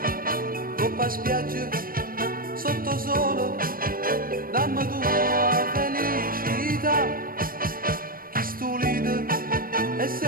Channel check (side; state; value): left; late; 0.41 ms